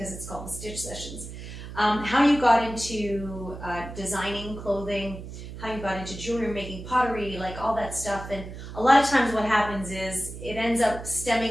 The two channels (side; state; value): right; noise; hum, 11 dB below the sound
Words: it's called the Stitch Sessions. How you got into designing clothing, how you got into jewelry, making pottery, like all that stuff. And a lot of times what happens is it ends up